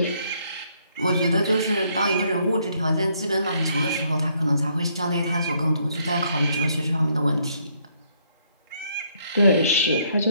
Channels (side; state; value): both; inverted; correlation -0.70